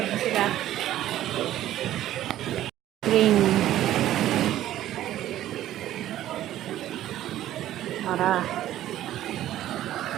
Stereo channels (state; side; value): quieter; left; 13.2 dB